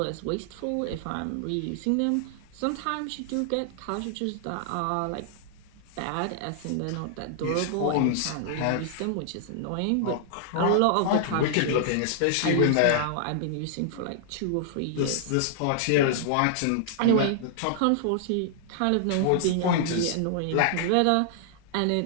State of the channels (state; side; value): different; both; correlation -0.01